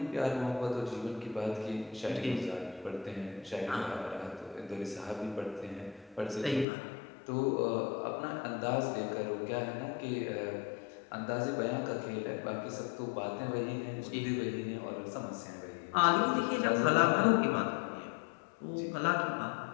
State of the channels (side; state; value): right; drops out; at 6.7 s